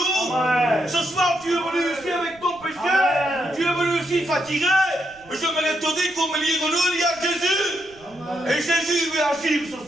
Amen. Ce soir, tu es venu ici avec ton péché. Amen. Tu es venu ici fatigué. Je me te dire qu'au milieu de nous, il y a Jésus. Amen. Et Jésus veut agir ce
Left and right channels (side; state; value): right; noise; rumble, 27 dB below the sound